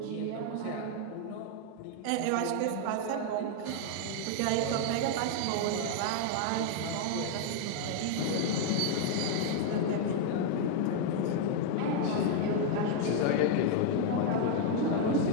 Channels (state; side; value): different; both; correlation 0.00